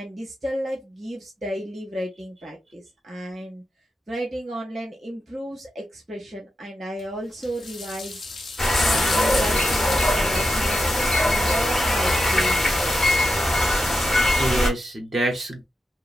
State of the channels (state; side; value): normal; both; correlation 0.88